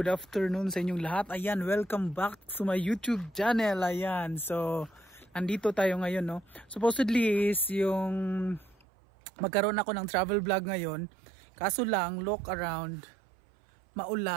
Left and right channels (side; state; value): left; drops out; at 8.8 s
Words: afternoon sa inyong lahat. Ayan, welcome back to my YouTube channel. Ayan, so andito tayo ngayon, no. Supposedly is yung magkaroon ako ng travel vlog ngayon. Kaso lang, look around,